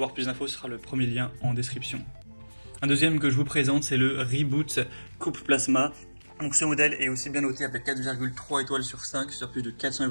plus d'infos, ce sera le premier lien en description. Un deuxième que je vous présente, c'est le Reboot Coupe Plasma. Donc ce modèle est aussi bien noté avec 4,3 étoiles sur 5 sur plus de 400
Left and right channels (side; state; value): both; inverted; correlation -1.00